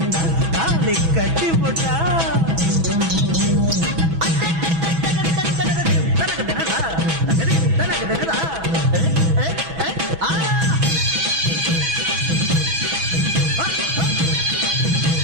தாலி கட்டி புட்டா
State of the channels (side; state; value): left; late; 6.1 ms